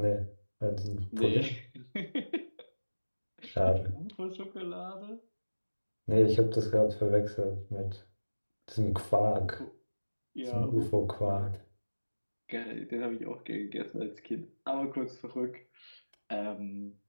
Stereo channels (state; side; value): inverted; both; correlation -1.00